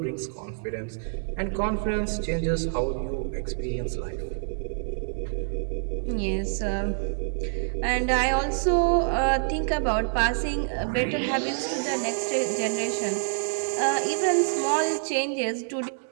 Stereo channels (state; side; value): silent; left; digital silence